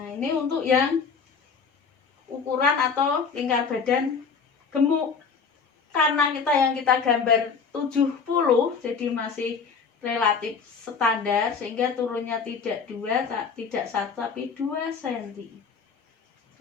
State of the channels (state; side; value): quieter; right; 5.7 dB